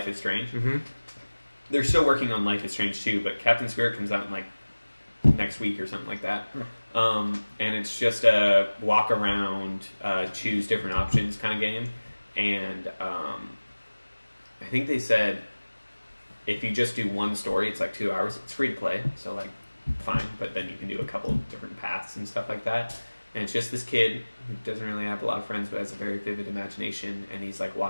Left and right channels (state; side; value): inverted; both; correlation -1.00